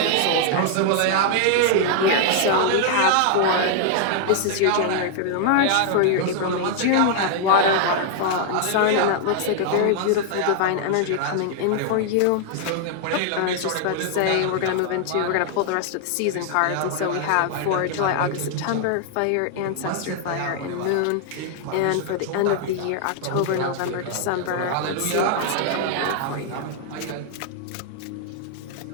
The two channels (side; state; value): both; different; correlation 0.00